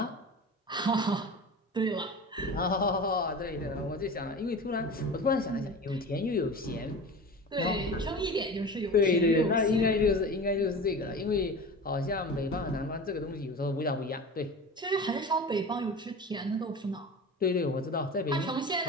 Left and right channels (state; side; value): normal; both; correlation 0.33